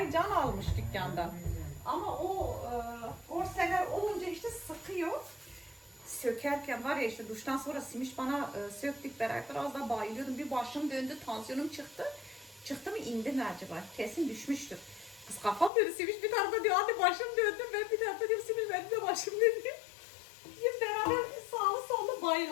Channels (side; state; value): right; drops out; at 15.7 s